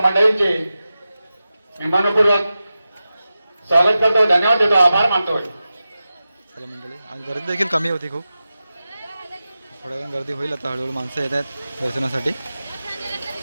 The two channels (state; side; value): inverted; both; correlation -0.93